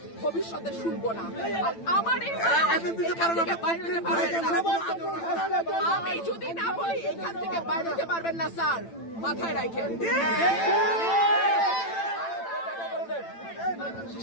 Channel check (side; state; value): right; late; 8.9 ms